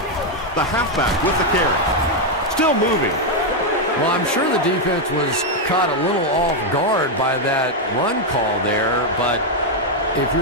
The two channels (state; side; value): normal; both; correlation 0.01